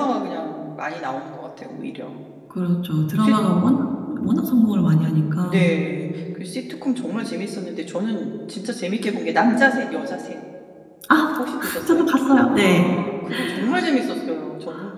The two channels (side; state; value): both; identical; correlation 1.00